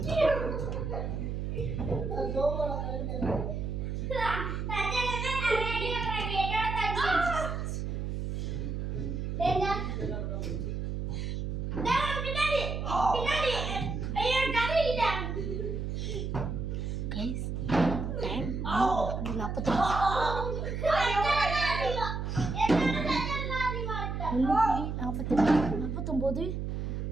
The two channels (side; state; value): right; noise; hum, 3 dB below the sound